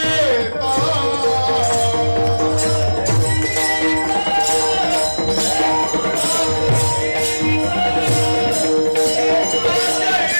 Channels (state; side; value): inverted; both; correlation -1.00